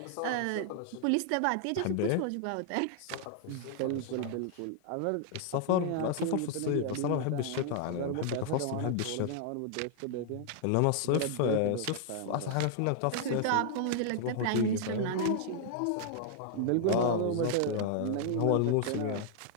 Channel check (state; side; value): different; both; correlation 0.00